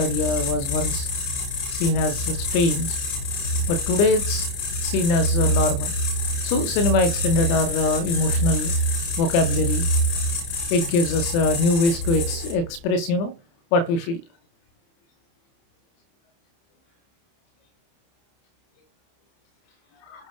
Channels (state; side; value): late; right; 29 ms